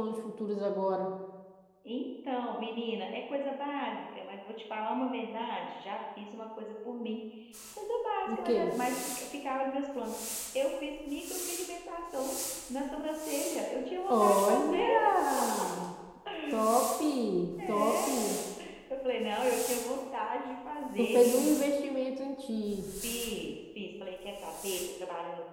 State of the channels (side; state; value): both; identical; correlation 1.00